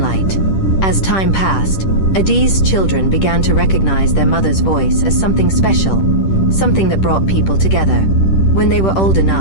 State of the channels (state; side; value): late; right; 10 ms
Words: As time passed, Adaeze's children began to recognize their mother's voice as something special, something that brought people together. When they were old